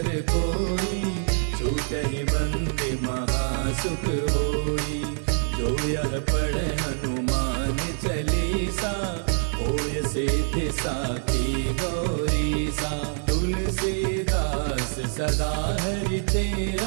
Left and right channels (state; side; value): silent; left; 61 dB below the other